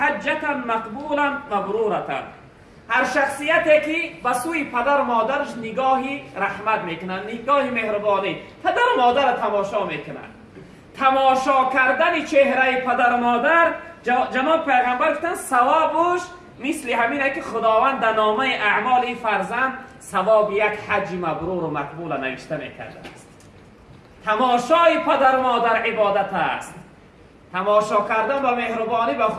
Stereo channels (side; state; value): both; identical; correlation 1.00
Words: مقبولا مبرورة. هر شخصیتی که به سوی پدر و مادرش نگاهی رحمت میکنن، نگاهی مهربانی، پدر و مادر را تماشا میکنن. تماشا کردن چهره پدر و مادر، جناب پیغمبر گفتن ثوابش مثل همینه که خداوند در نامه اعمال فرزند ثواب یک حج مبرور و مقبول نوشته میکرده است. تماشای پدر و مادر عبادت است. تماشا کردن با مهربانی و